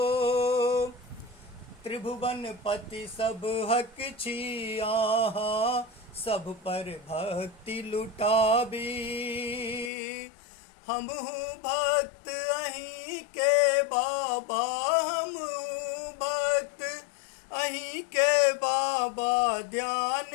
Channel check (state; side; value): drops out; right; at 9.9 s